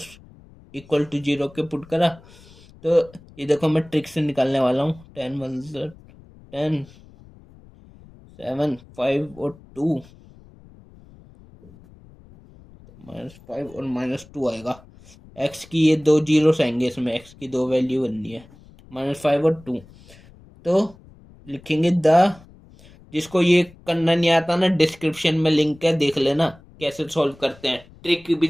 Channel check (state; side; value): noise; left; rumble, 24 dB below the sound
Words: इक्वल टू 0 के पुट करा। तो ये देखो मैं ट्रिक से निकालने वाला हूँ, 10 1 10 7 5 और 2 -5 और -2 आएगा। एक्स की ये दो जीरोस आएंगे इसमें, एक्स की दो वैल्यू बननी है, -5 और 2। तो लिखेंगे जिसको ये करना नहीं आता ना, डिस्क्रिप्शन में लिंक है, देख लेना कैसे सॉल्व करते हैं। ट्रिक भी